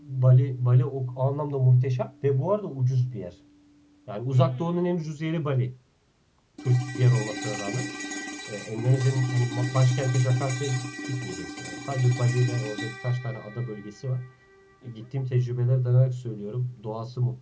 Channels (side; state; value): both; identical; correlation 1.00